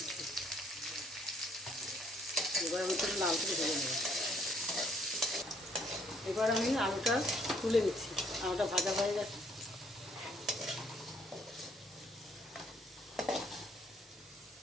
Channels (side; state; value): both; normal; correlation 0.65